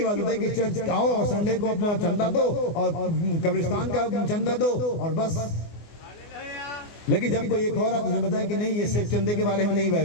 बात बताई कि चर्च आओ और संडे को अपना चंदा दो और कब्रिस्तान का चंदा दो और बस। लेकिन जब कोई एक और आपने बताया कि नहीं, ये सिर्फ चंदे के बारे में नहीं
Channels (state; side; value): late; right; 24 ms